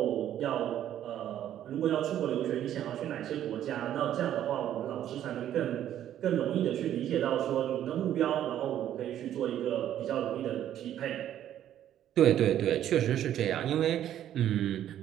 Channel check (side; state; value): left; quieter; 11.2 dB